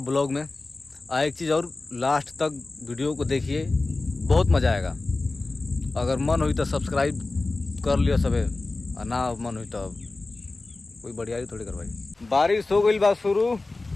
ब्लॉग में। एक चीज़ और, लास्ट तक वीडियो को देखिए, बहुत मज़ा आएगा। अगर मन हुई तो सब्सक्राइब कर लियो सबे, और ना मन हुई तो कोई बढ़िया थोड़ी करवाई। बारिश हो गई बा शुरू।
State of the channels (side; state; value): right; quieter; 3.3 dB